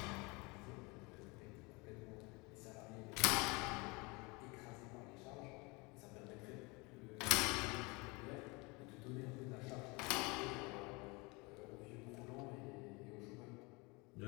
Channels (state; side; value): quieter; right; 27.2 dB